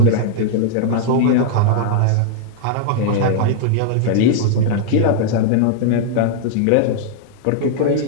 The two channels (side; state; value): both; different; correlation -0.01